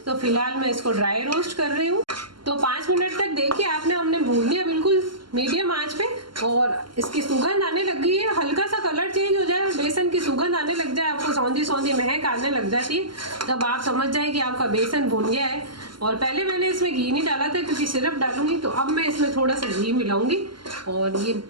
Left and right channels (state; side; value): late; left; 0.72 ms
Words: तो फिलहाल मैं इसको ड्राई रोस्ट कर रही हूँ। तो 5 मिनट तक देखिए हमने भून लिया बिल्कुल मीडियम आंच पे, और इसकी सुगंध आने लग गई है। हल्का सा कलर चेंज हो जाए, बेसन की सुगंध आने लग जाए, आपको सौंधी सौंधी महक आने लग जाती है, तब आप समझ जाए कि आपका बेसन भून गया है। और पहले मैंने इसमें घी नहीं डाला था क्योंकि सिरप डालूंगी, तो अब मैं इसमें थोड़ा सा घी मिलाऊंगी, और ये